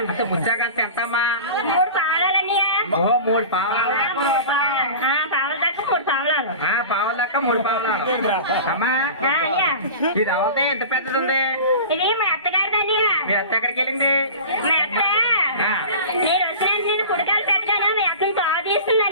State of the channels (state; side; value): inverted; both; correlation -0.35